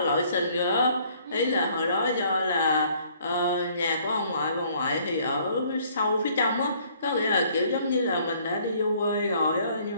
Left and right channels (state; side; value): inverted; both; correlation -0.61